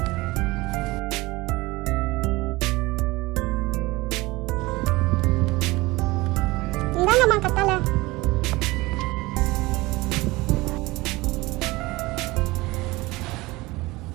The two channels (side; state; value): left; quieter; 21.3 dB